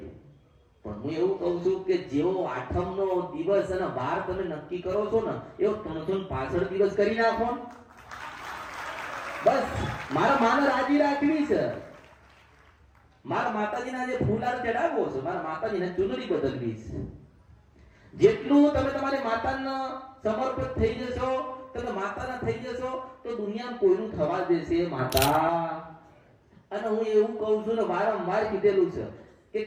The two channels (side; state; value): both; identical; correlation 1.00